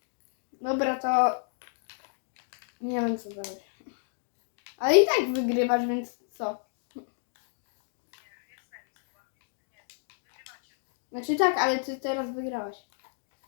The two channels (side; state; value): right; silent; digital silence